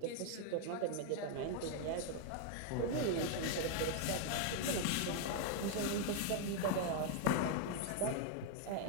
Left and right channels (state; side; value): different; both; correlation 0.00